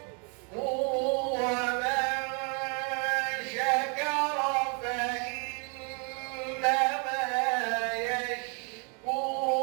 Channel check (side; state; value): left; quieter; 37.0 dB